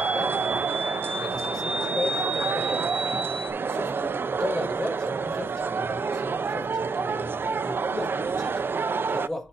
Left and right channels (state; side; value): quieter; left; 3.5 dB